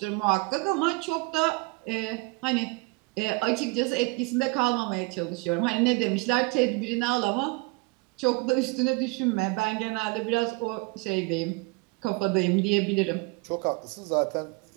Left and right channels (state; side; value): quieter; left; 26.7 dB